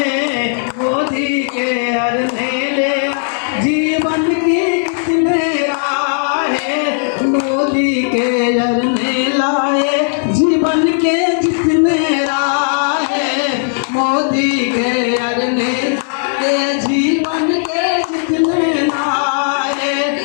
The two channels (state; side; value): silent; right; digital silence